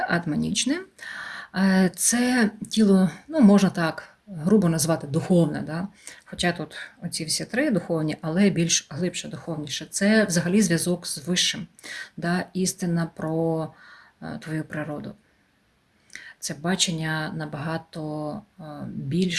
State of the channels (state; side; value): identical; both; correlation 1.00